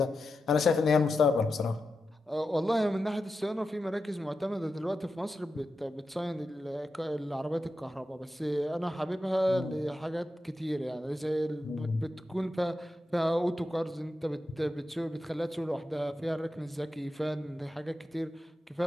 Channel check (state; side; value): normal; both; correlation 0.90